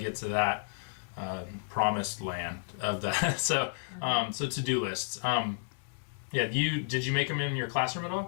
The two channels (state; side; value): silent; right; digital silence